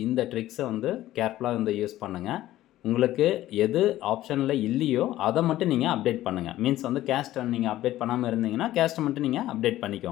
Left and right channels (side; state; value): right; quieter; 14.6 dB